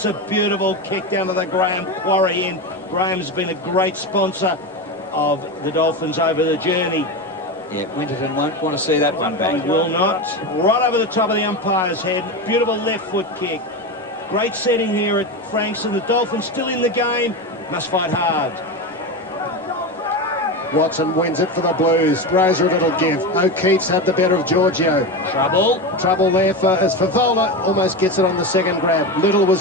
a beautiful kick down to the Graham quarry end. Graham's been a great sponsor of the Dolphins over the journey. Yeah, Winterton won't want to see that one back. He will not. Right over the top of the umpire's head. Beautiful left foot kick. Great setting here at Frankston. The Dolphins still in the game. Must fight hard. Watson wins it for the Blues. Roser a little give. O'Keefe's had the better of Giorgio. Trouble there as Favola almost gets it on the second grab. Little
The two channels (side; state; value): both; normal; correlation 0.20